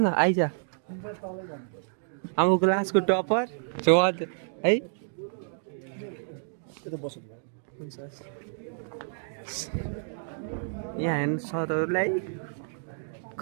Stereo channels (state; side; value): silent; left; digital silence